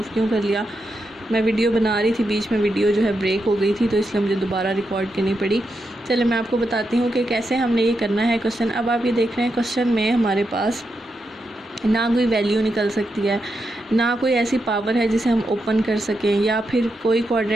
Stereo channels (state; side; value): normal; both; correlation 0.85